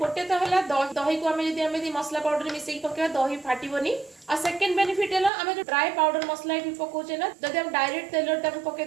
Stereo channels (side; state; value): left; drops out; at 5.3 s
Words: तो हला दही को हमें यदि हमें मसला पाउडर मिसेई पकेबा दही फाटीबोनी आ सेकंड बेनिफिट है हमें जो ड्राई पाउडर मसला भी पकोचे ना जदि हम डायरेक्ट तेलर ताको पके